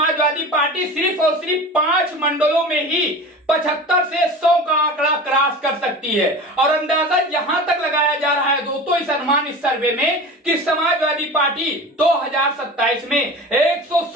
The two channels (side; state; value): both; normal; correlation 0.34